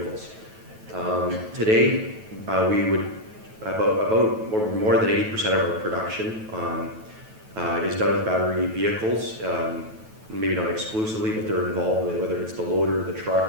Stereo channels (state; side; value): late; left; 9.2 ms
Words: Today we would about more than 80% of our production is done with battery vehicles. Maybe not exclusively, but they're involved with, whether it's the loader, the